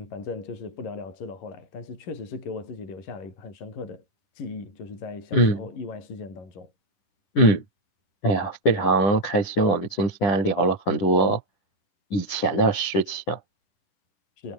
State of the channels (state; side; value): late; right; 11 ms